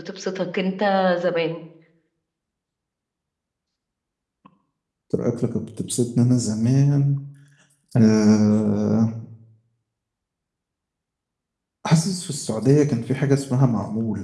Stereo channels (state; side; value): identical; both; correlation 1.00